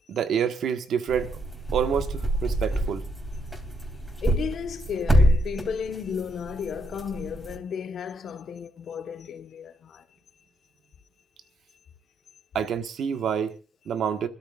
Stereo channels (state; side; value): normal; both; correlation 0.76